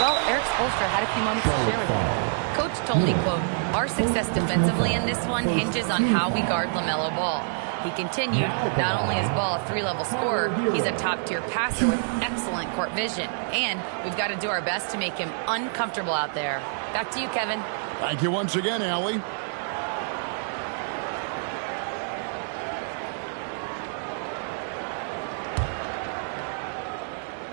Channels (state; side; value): silent; left; 60 dB below the other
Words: Well, Eric Spoelstra had a few moments to share with me. Coach told me, quote, "Our success defensively in this one hinges on how we guard LaMelo Ball." He continued, not only is Ball a 3-level scorer, he's a top-tier passer with excellent court vision. And we've got to do our best to make him uncomfortable out there. Back to you, Kevin. Thank you once again, Allie.